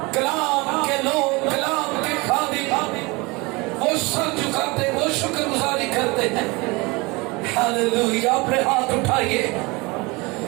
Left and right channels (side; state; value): left; quieter; 25.4 dB